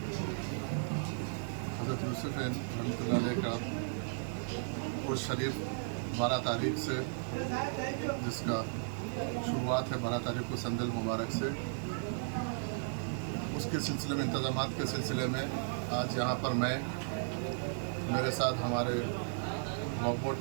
हज़रत यूसुफ़ रहमतुल्लाह अलैह का उर्स शरीफ 12 तारीख से, जिसका शुरुआत है 12 तारीख को संदल मुबारक से, उसके सिलसिले में इंतज़ामात के सिलसिले में आज यहाँ पर मैं, मेरे साथ हमारे वक्फ बोर्ड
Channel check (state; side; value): silent; left; digital silence